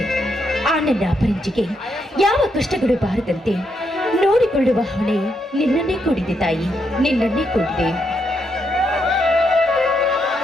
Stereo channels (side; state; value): both; normal; correlation 0.79